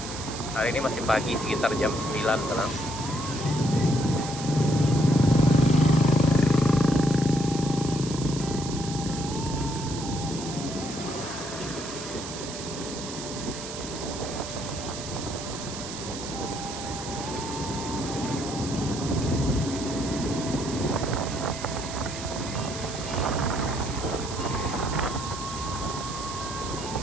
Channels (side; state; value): right; noise; hiss, 9 dB below the sound